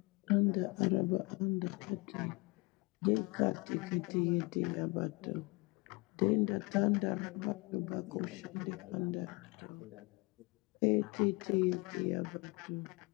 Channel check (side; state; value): right; quieter; 26.6 dB